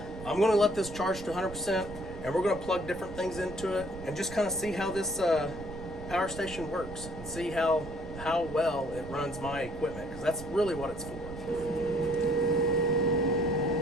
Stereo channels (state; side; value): noise; right; rumble, 12 dB below the sound